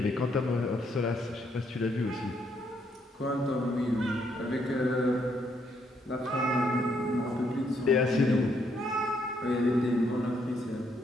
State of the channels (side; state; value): both; normal; correlation 0.73